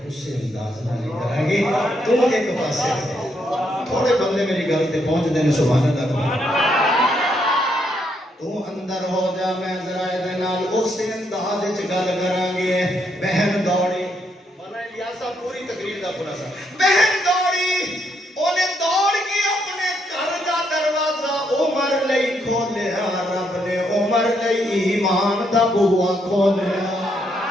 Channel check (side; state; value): both; normal; correlation 0.76